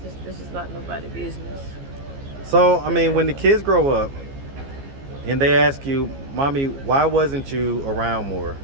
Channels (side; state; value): left; late; 15 ms